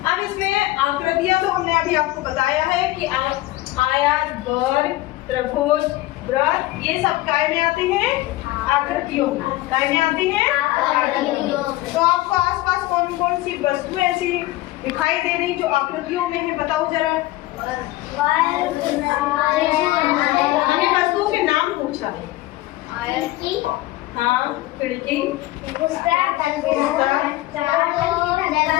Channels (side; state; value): right; quieter; 17.6 dB